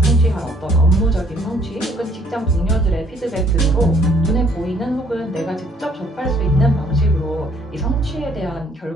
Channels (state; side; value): normal; both; correlation 0.63